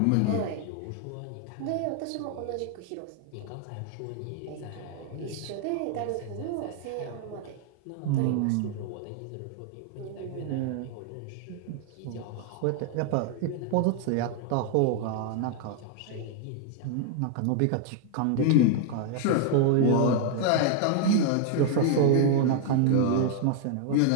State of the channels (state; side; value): different; both; correlation 0.00